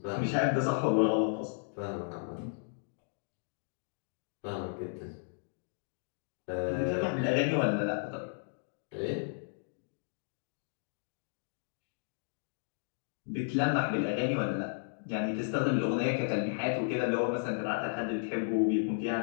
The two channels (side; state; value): right; silent; digital silence